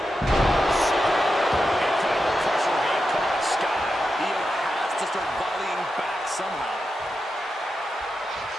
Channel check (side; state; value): both; normal; correlation 0.89